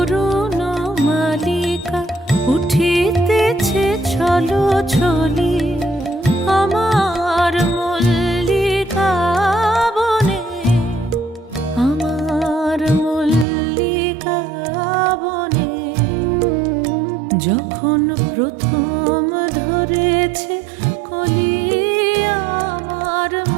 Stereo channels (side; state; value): left; drops out; at 13.5 s